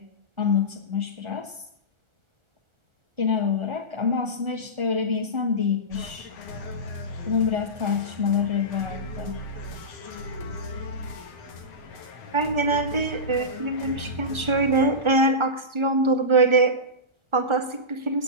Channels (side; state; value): left; late; 1.4 ms